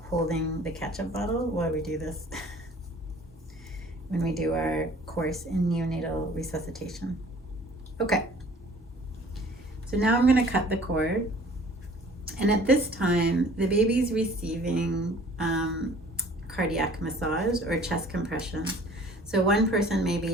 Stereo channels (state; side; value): normal; both; correlation 0.51